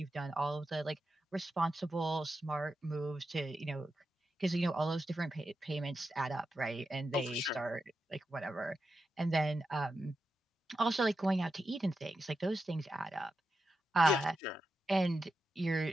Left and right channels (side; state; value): both; normal; correlation 0.88